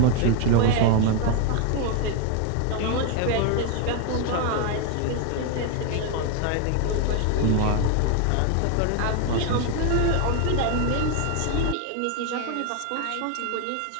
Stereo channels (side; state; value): both; different; correlation 0.01